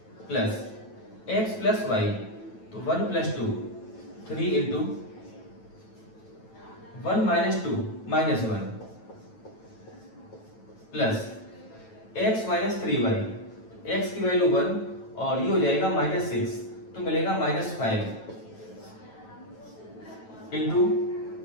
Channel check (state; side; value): late; right; 9.1 ms